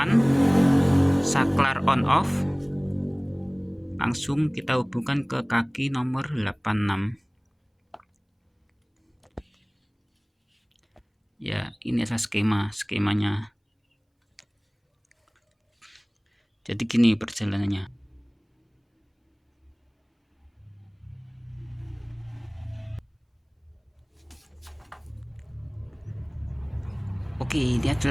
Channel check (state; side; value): identical; both; correlation 1.00